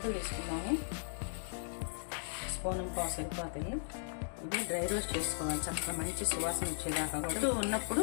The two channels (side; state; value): right; silent; digital silence